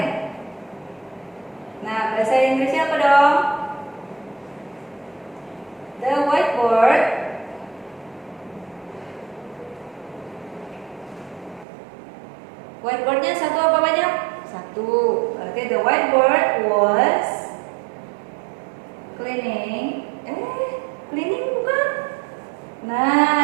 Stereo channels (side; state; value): left; drops out; at 11.7 s